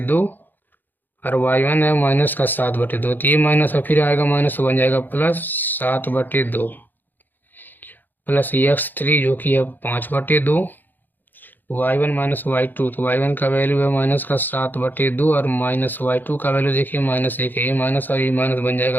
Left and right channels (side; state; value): right; late; 0.089 ms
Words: और y1 है माइनस का 7/2, तो ये माइनस और फिर आएगा माइनस बन जाएगा प्लस 7/2 प्लस x3 जो कि है 5/2, y1 - y2 तो y1 का वैल्यू है माइनस का 7/2 और माइनस y2 का वैल्यू देखिए -1 है। ये माइनस और ये माइनस बन